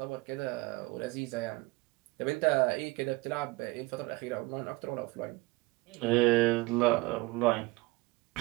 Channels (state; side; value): quieter; left; 22.5 dB